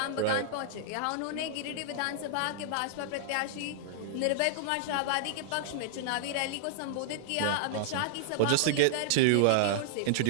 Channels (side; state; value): both; different; correlation -0.01